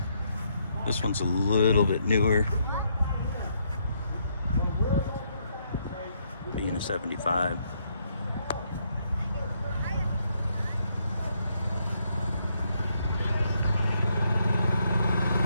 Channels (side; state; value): both; inverted; correlation -0.74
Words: This one's a little bit newer, being a 75.